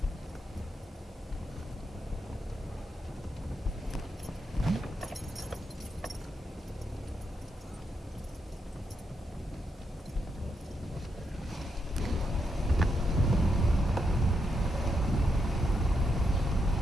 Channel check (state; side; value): normal; both; correlation 0.82